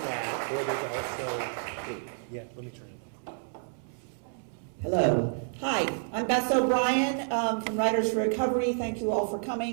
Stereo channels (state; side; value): silent; left; 58 dB below the other